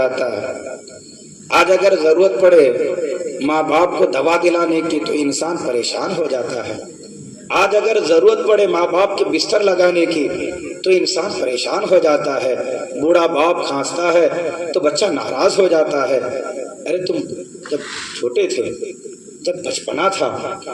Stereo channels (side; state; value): both; identical; correlation 1.00